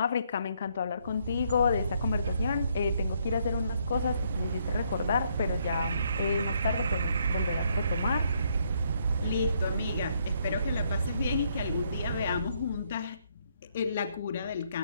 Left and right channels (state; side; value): inverted; both; correlation -0.71